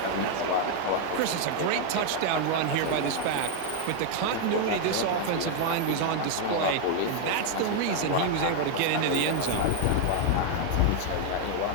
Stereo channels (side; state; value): both; different; correlation 0.00